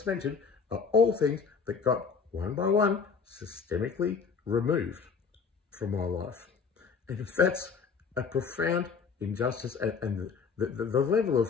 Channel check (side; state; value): right; quieter; 5.8 dB